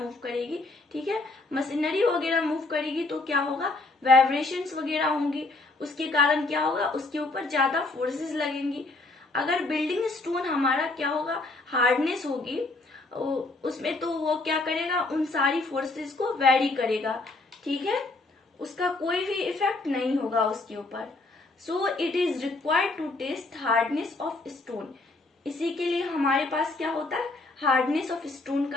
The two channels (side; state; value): right; quieter; 3.2 dB